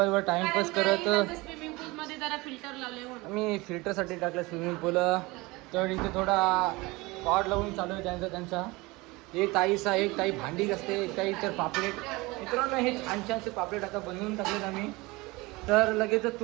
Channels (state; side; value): quieter; left; 22.9 dB